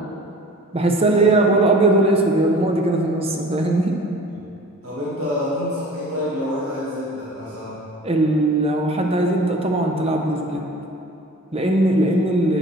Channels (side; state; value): both; normal; correlation 0.43